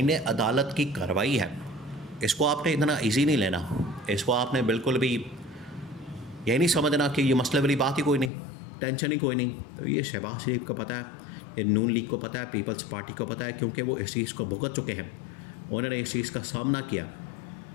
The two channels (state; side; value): drops out; right; at 8.3 s